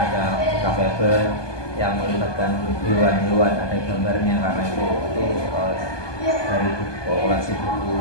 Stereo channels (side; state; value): right; late; 1.2 ms